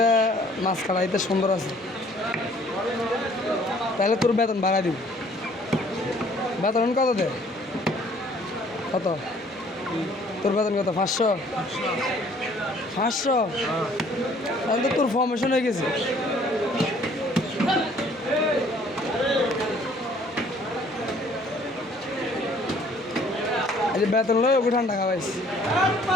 মাছ খাড়াইতে সুন্দর আছে, তাহলে তোর বেতন বাড়াই দিব। বেতন কত দে? কত তোর বেতন? কত? 500? 500? তাহলে তো তোর ফর্মেশন হয়ে গেছে। এই যে বেতন লয় ওকে ঠান্ডা খাওয়াইস,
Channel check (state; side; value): normal; both; correlation 0.58